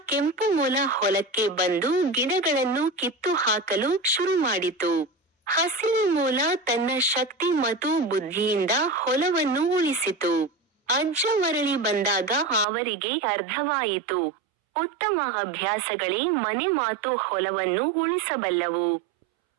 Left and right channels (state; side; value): drops out; left; at 12.7 s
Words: ಕೆಂಪು ಮೊಲ ಹೊಲಕ್ಕೆ ಬಂದು ಗಿಡಗಳನ್ನು ಕಿತ್ತು ಹಾಕಲು ಶುರು ಮಾಡಿತು. ಹಸಿರು ಮೊಲ ತನ್ನ ಶಕ್ತಿ ಮತ್ತು ಬುದ್ಧಿಯಿಂದ ಹೊಲವನ್ನು ಉಳಿಸಿತು. ಅಜ್ಜ ಮರಳಿ ಬಂದಾಗ ಅವರಿಗೆ ಅರ್ಥವಾಯಿತು, ಉತ್ತಮ ಅಭ್ಯಾಸಗಳೇ ಮನೆ ಮಾತು ಹೊಲವನ್ನು ಉಳಿಸಬಲ್ಲವು.